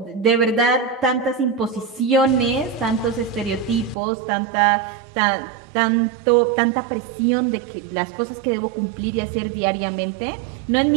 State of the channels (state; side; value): drops out; left; at 4.0 s